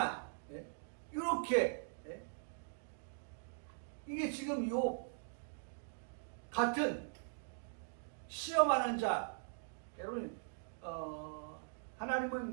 네? 이렇게. 네? 이게 지금 요 같은 시험하는 자, 여러분,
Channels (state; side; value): silent; left; digital silence